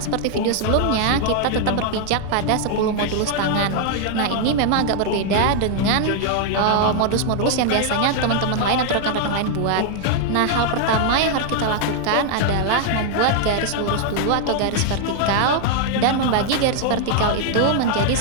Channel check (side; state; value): both; different; correlation 0.00